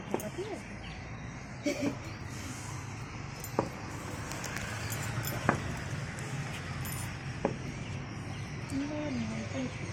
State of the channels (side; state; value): both; identical; correlation 1.00